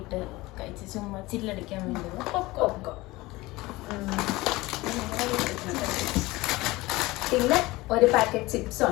ഇട്ട് കഴിച്ച് ചുമ്മാ ചില്ലടിക്കാൻ വേണ്ടി പോപ്കോൺ. പിന്നെ ഒരു പാക്കറ്റ് ചിപ്സ്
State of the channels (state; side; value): quieter; right; 20.5 dB